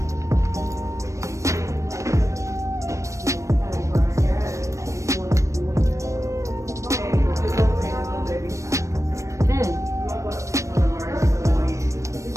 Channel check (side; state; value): left; late; 0.15 ms